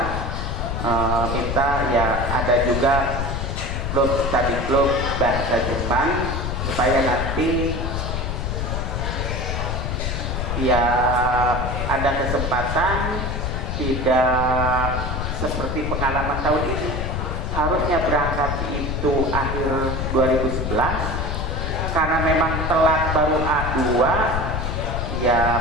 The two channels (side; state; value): left; noise; rumble, 2 dB below the sound